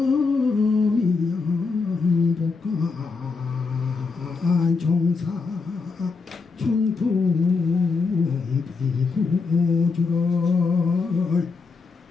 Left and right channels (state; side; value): quieter; right; 4.5 dB